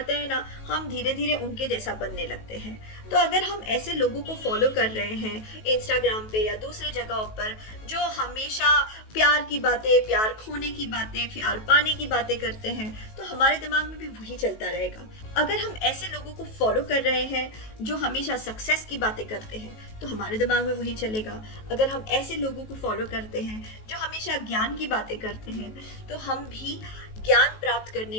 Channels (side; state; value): right; late; 19 ms